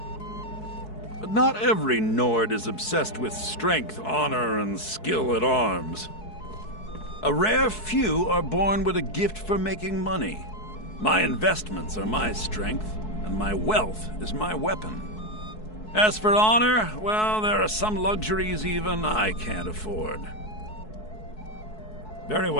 But not every Nord is obsessed with strength, honor, and skill at arms. A rare few are born with a gift for making money. My investments are my strength, and my wealth is my weapon. As for honor, well, there are some luxuries even I can't afford. Very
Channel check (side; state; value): right; late; 4.7 ms